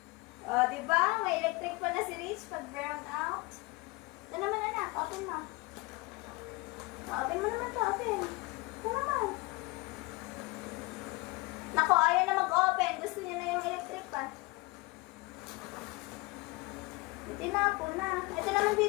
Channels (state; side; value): quieter; right; 24.4 dB